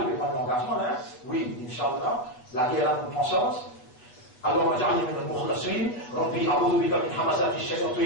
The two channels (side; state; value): right; late; 8.0 ms